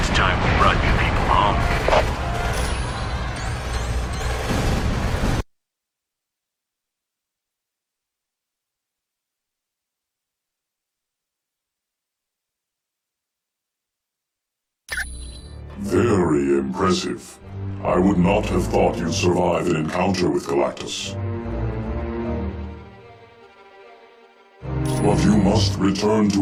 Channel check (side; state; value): both; identical; correlation 1.00